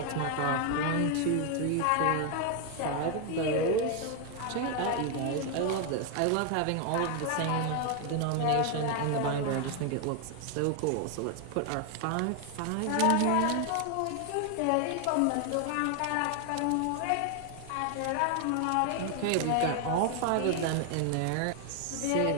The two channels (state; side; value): different; both; correlation 0.00